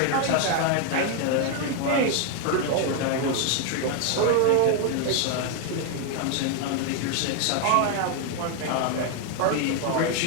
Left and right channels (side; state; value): both; different; correlation 0.00